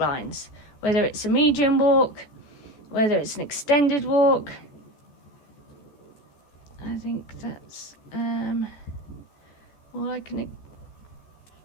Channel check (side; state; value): right; late; 14 ms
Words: whether it's a medium walk, whether it's an extended walk. I think that's all I can.